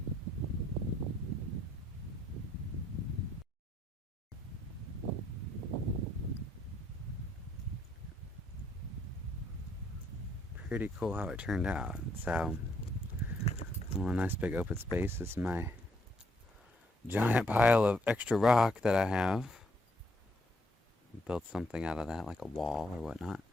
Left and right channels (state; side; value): normal; both; correlation 0.71